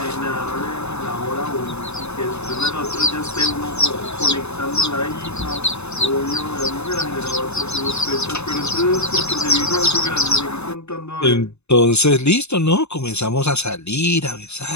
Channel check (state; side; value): late; right; 0.81 ms